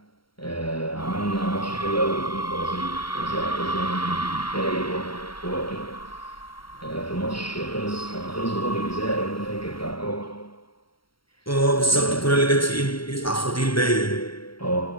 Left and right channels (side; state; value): right; late; 0.74 ms